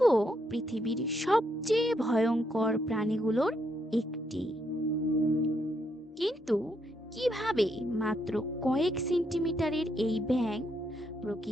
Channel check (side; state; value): both; normal; correlation 0.76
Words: পৃথিবীর সবচেয়ে ভয়ঙ্কর প্রাণীগুলোর একটি। কিন্তু কিভাবে মাত্র কয়েক সেন্টিমিটারের এই ব্যাঙ